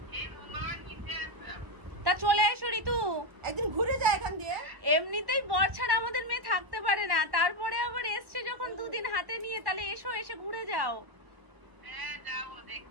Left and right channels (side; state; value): left; late; 1.1 ms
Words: তা চলে এসো ঋতু, একদিন ঘুরে যায় এখান দিয়ে। এমনিতেই বর ছাড়া আমাদের মেয়ে থাকতে পারে না, তারপরে আবার এসছে যখন দুদিন হাতে নিয়ে, তাহলে এসো, এসে ঘুরে যাও।